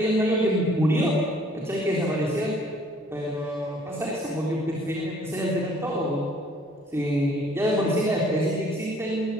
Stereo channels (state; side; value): normal; both; correlation 0.59